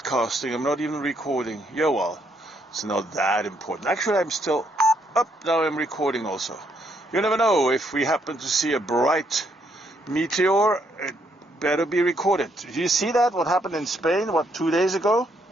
I'm not even recording. Yeah, well, it's not that important. Actually, I'm still up. Now I'm recording also. You never know, if we happen to see a bright meteor, it better be recorded. Did you see that? What happened in Spain, 2 days ago?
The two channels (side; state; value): both; normal; correlation 0.73